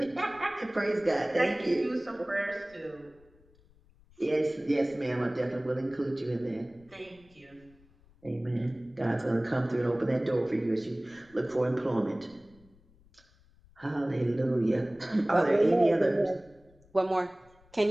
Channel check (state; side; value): noise; left; rumble, 29 dB below the sound